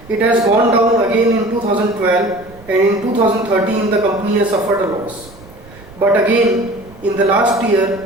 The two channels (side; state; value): right; noise; rumble, 22 dB below the sound